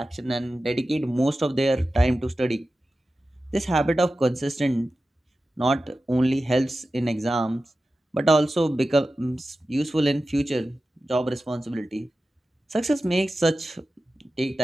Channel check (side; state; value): both; normal; correlation 0.94